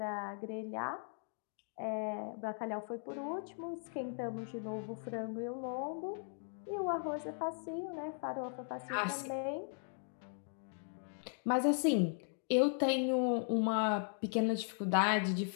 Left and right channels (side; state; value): right; silent; 52 dB below the other